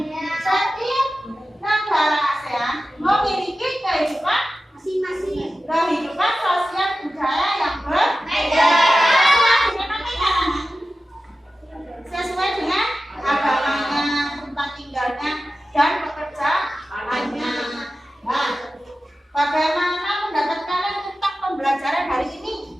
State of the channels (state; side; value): normal; both; correlation 0.94